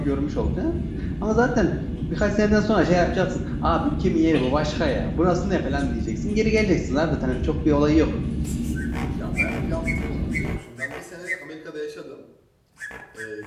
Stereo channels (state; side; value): identical; both; correlation 1.00